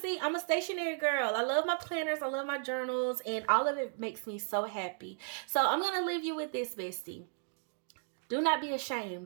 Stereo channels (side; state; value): left; silent; digital silence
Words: I'm a stationary girl. I love my planners, I love my journals, and all of it makes me so happy. So I'm gonna leave you with this, bestie. Do not be